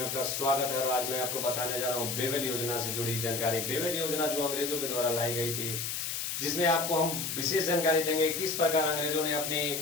आपका स्वागत है। और आज मैं आपको बताने जा रहा हूँ बेबल योजना से जुड़ी जानकारी। बेबल योजना जो अंग्रेजों के द्वारा लाई गई थी, जिसमें आपको हम विशेष जानकारी देंगे किस प्रकार अंग्रेजों ने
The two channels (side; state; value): left; noise; hiss, 3 dB below the sound